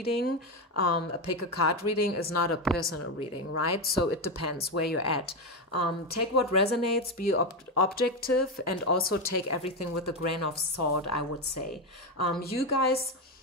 A pick a card reading is not a personal reading, right? So it depends where you're at. Take what resonates, be objective, and also take everything with a grain of salt, I would say. You guys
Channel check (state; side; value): normal; both; correlation 0.12